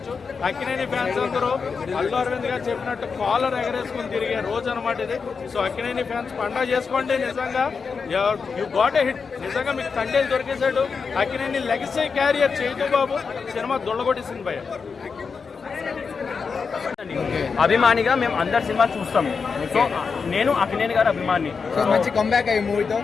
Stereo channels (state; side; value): quieter; right; 5.3 dB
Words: అక్కినేని ఫ్యాన్స్ అందరూ అల్లు అరవింద్ గారు చెప్పినట్టు కాలర్ ఎగరేసుకుని తిరిగే రోజు అనమాట ఇది. సో అక్కినేని ఫ్యాన్స్ పండగ చేసుకోండి. నిజంగా యూ గాట్ ఎ హిట్. నిజంగా మీకు తండేలు దొరికేశాడు. అక్కినేని లెగసీ క్యారియర్ చైతూ బాబు సినిమా దొల్లగొట్టేసింది భయ. అభిమానిగా మేము అందరు సినిమా చూస్తాము. సో నేను అక్కినేని గారు అభిమాని. సో మంచి కంబ్యాక్ అయ్యి మూవీతో